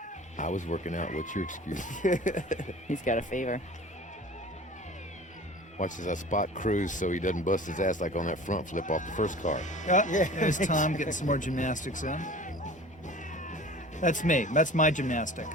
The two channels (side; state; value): both; normal; correlation 0.42